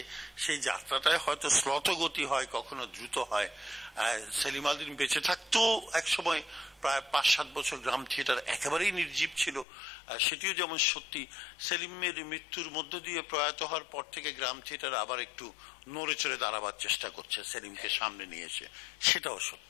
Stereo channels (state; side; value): drops out; right; at 9.7 s